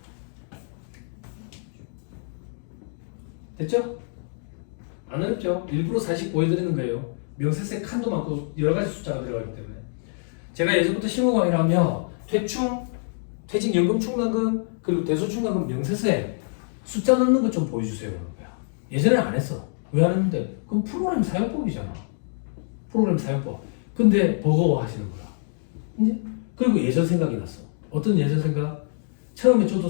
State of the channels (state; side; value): silent; right; digital silence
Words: 됐죠? 안 어렵죠? 일부러 사실 보여드리는 거예요. 명세세 칸도 많고 여러 가지 숫자가 들어가기 때문에. 제가 예전부터 실무강의라면 퇴충, 퇴직연금 충당금, 그리고 대소충당금 명세세 숫자 넣는 것 좀 보여주세요. 그런 거야. 예전에 안 했어. 왜 안 했는데? 그럼 프로그램 사용법이잖아. 프로그램 사용법. 근데 버거워하시는 거야. 이제 그리고 예전 생각이 났어. 어떤 예전 생각? 처음에 저도